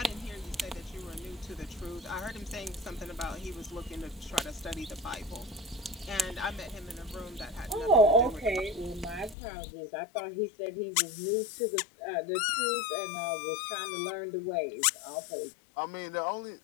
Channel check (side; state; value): right; drops out; at 9.3 s